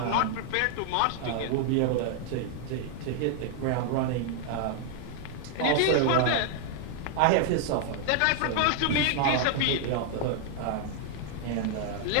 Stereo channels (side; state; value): both; different; correlation 0.00